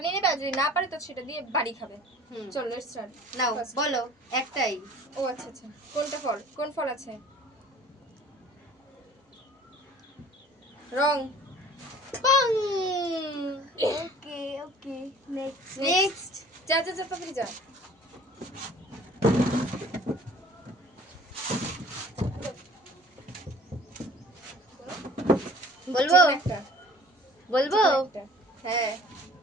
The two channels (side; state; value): both; normal; correlation 0.49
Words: নিয়ে নেবে, আর যদি না পারে তো সেটা দিয়ে বাড়ি খাবে। চলো লেটস স্টার্ট। নাও বলো একটাই। ও আচ্ছা আচ্ছা, কোনটা ফল, কোন ফল আছে? রং। পাং। ওকে ওকে, নেক্সট নেক্সট যা যা যা, তাড়াতাড়ি যা। বলবো একটা বলবো একটা, হ্যাঁ